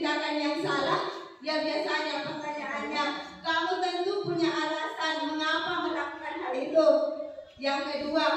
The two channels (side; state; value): both; identical; correlation 1.00